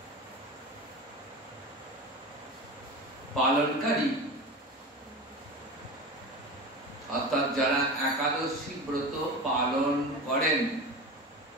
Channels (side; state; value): both; normal; correlation 0.29